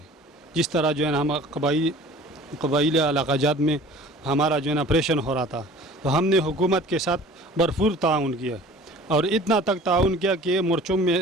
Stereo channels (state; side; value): normal; both; correlation 0.46